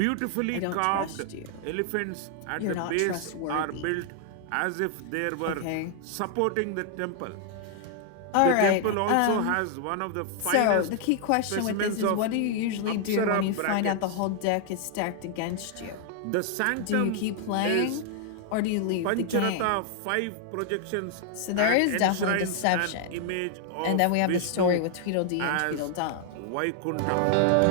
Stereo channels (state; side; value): different; both; correlation 0.00